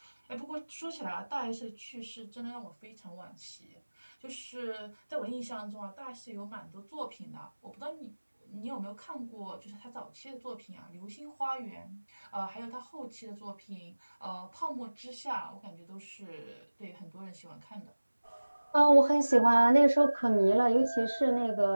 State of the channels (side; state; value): both; inverted; correlation -1.00